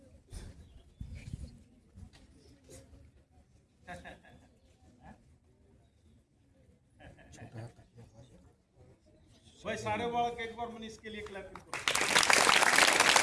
भाई सारे बालक एक बार मैंने इसके लिए क्लैपिंग करो।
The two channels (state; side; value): identical; both; correlation 1.00